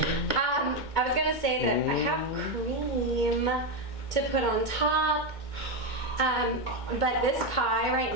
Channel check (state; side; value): late; right; 2.2 ms